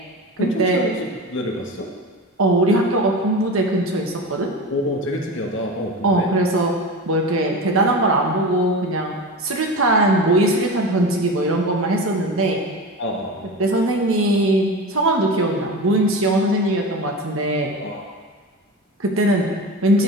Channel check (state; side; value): normal; both; correlation 0.28